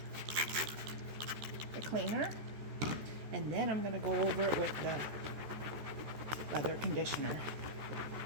the cleaner, and then I'm going to go over it with the leather conditioner.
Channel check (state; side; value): late; left; 14 ms